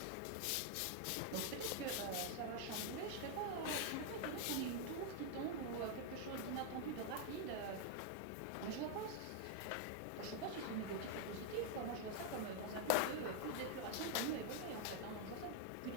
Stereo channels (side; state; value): both; different; correlation 0.00